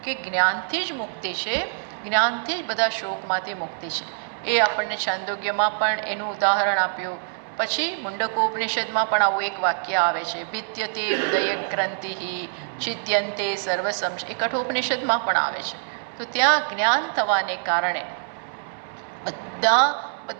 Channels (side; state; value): left; silent; 62 dB below the other